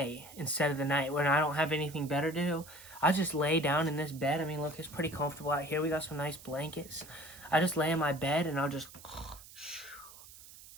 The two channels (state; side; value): noise; right; hiss, 18 dB below the sound